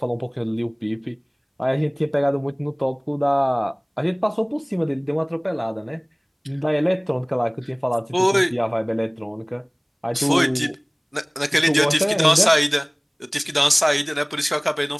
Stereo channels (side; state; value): both; identical; correlation 1.00